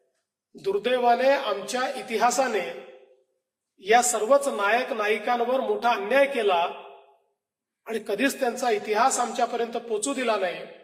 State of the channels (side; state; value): both; identical; correlation 1.00